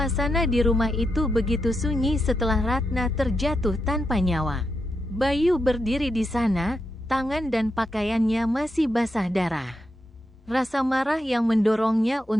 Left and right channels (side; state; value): both; normal; correlation 0.85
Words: di rumah itu begitu sunyi setelah Ratna terjatuh tanpa nyawa. Bayu berdiri di sana, tangan dan pakaiannya masih basah darah. Rasa marah yang mendorongnya